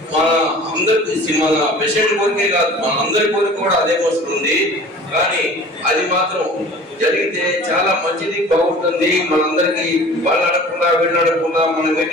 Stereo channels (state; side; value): normal; both; correlation 0.44